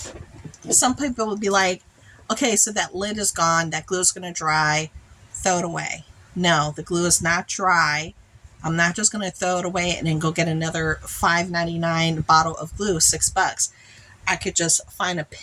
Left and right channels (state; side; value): identical; both; correlation 1.00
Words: Some people will be like, okay, so that lid is gone. That glue is going to dry. Throw it away. No, the glue is not dry. I'm not just going to throw it away and then go get another $5.99 bottle of glue, $6. I could just find a